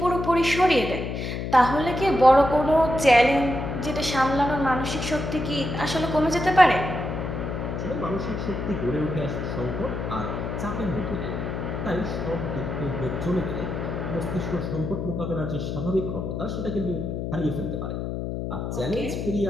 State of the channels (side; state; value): left; noise; hum, 4 dB below the sound